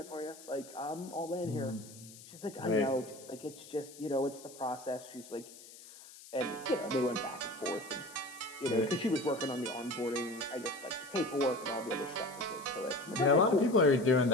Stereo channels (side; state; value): left; noise; hiss, 18 dB below the sound